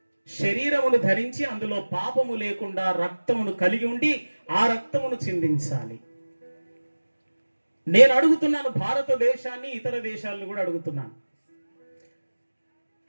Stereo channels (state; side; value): inverted; both; correlation -1.00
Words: శరీరమును ధరించి అందులో పాపము లేకుండా రక్తమును కలిగి ఉండి ఆ రక్తమును చిందించాలి. నేను అడుగుతున్నాను భారతదేశాన్ని, ఇతర దేశాలను కూడా అడుగుతున్నాను.